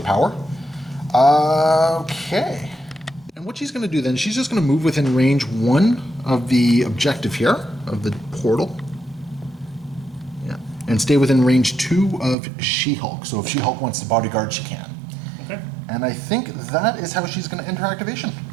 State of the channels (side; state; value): left; drops out; at 12.4 s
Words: Okay. And what she's going to do then, she's just going to move within range 1 of the objective here, of the portal. Yeah. And stay within range 2 of She-Hulk. So if She-Hulk wants to bodyguard, she can. Okay. And I think that is how she's going to enter activation.